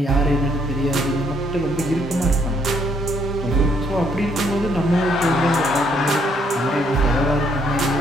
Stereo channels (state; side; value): normal; both; correlation 0.69